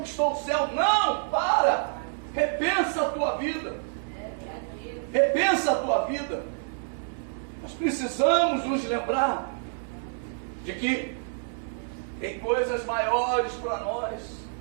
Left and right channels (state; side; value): silent; left; digital silence